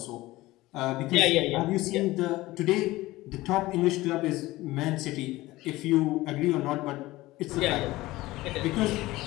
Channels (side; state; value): right; quieter; 18.5 dB